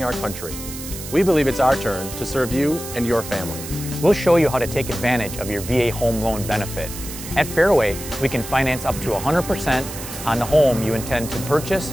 our country. We believe it's our turn to serve you and your family. We'll show you how to take advantage of your VA home loan benefit. At Fairway, we can finance up to 100% on the home you intend to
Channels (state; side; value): noise; right; hiss, 11 dB below the sound